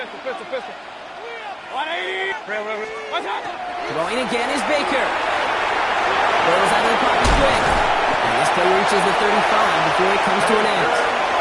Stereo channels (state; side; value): identical; both; correlation 1.00